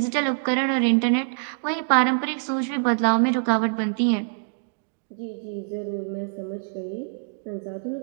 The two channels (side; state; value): left; silent; digital silence